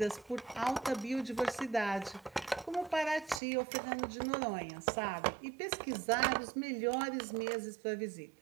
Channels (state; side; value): drops out; left; at 3.4 s